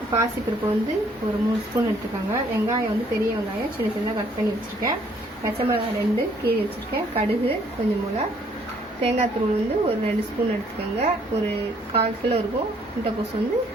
பாசிப்பருப்பு வந்து ஒரு 3 ஸ்பூன் எடுத்துக்கோங்க, வெங்காயம் வந்து பெரிய வெங்காயம் சின்ன சின்னதாக கட் பண்ணி வச்சுருக்கேன், பச்சை மிளகாய் 2 கீறி வச்சுருக்கேன், கடுகு கொஞ்சம் போல், தேங்காய் தூள் வந்து ஒரு 2 ஸ்பூன் எடுத்துக்கோங்க, ஒரு 1/4 கிலோ இருக்கும்.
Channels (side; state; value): both; normal; correlation 0.64